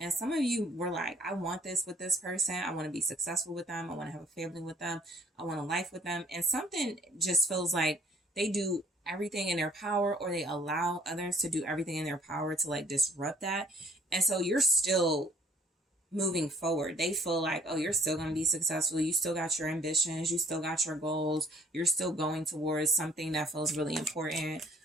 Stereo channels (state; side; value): normal; both; correlation 0.60